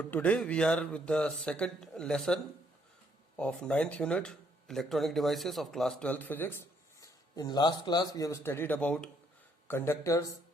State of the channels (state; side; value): normal; both; correlation 0.69